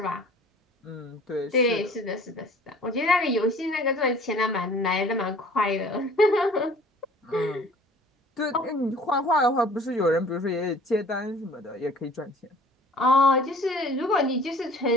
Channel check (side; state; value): both; normal; correlation 0.50